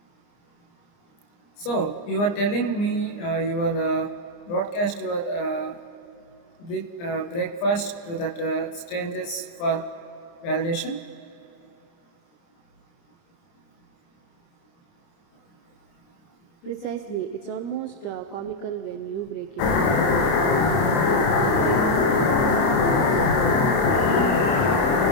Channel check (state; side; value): late; right; 29 ms